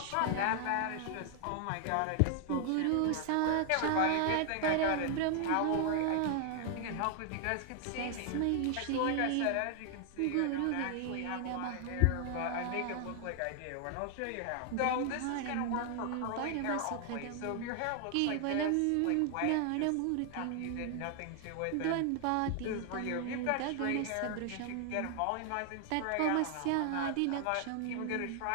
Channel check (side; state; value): both; different; correlation 0.00